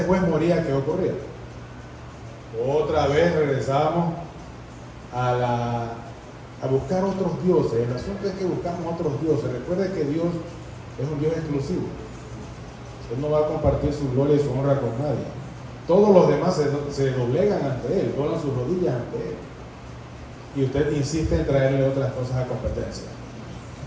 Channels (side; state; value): both; identical; correlation 1.00